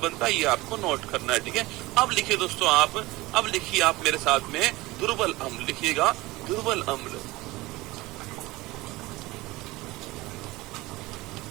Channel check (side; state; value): left; quieter; 20.2 dB